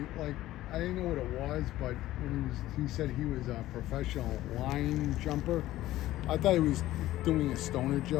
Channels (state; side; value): quieter; right; 15.2 dB